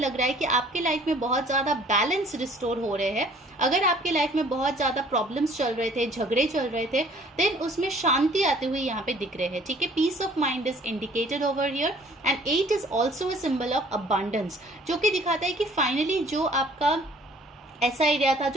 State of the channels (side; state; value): both; normal; correlation 0.55